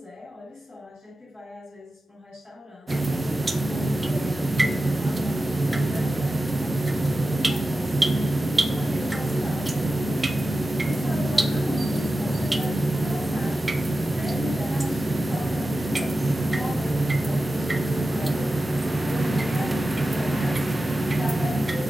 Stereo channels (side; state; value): both; normal; correlation 0.93